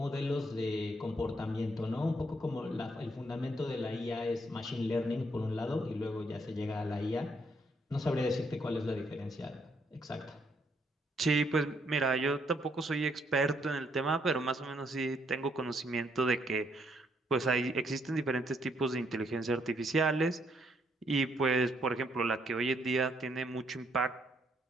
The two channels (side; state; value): both; normal; correlation 0.72